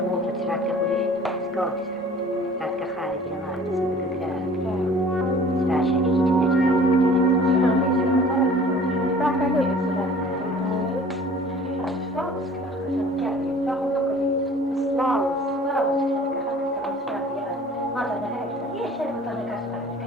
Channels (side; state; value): both; normal; correlation 0.48